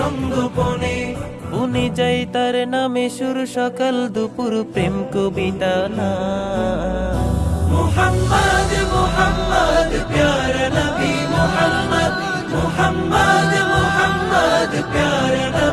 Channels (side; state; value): both; identical; correlation 1.00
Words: বনে যাই তার নামে সুর সকাল দুপুর প্রেম কবিতা না। মুহাম্মদ মুহাম্মদ প্যারা নবী মুহাম্মদ, মুহাম্মদ মুহাম্মদ প্যারা